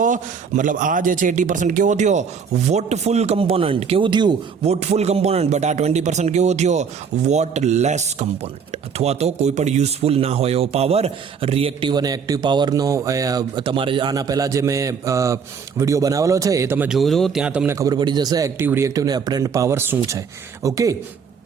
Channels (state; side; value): quieter; left; 6.3 dB